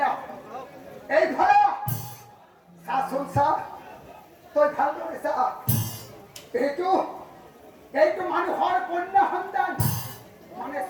এই ভাড়া শাসন সাহ তোর ভালো এইটো মানুহৰ কন্যা সন্তান মানে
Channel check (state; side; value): identical; both; correlation 1.00